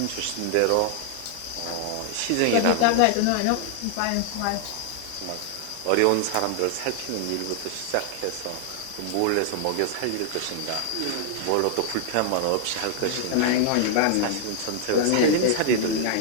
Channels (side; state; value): both; different; correlation 0.00